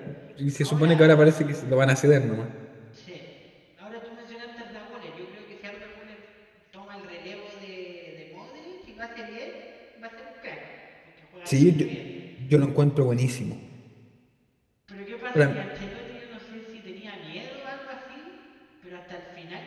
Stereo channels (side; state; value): both; identical; correlation 1.00